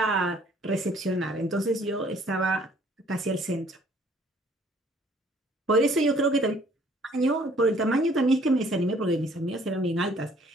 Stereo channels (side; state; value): both; normal; correlation 0.59